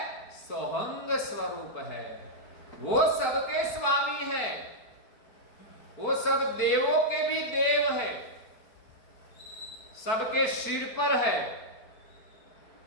सोहंग स्वरूप है। वो सबके स्वामी है, वो सब देवों के भी देव है, सबके सिर पर है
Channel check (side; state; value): right; late; 4.5 ms